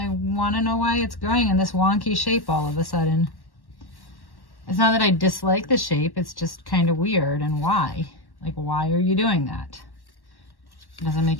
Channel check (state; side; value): late; right; 1.1 ms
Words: want to know why it's growing in this wonky shape all of a sudden. It's not that I dislike the shape, it's just kind of weird. And why? Like, why are you doing that? It doesn't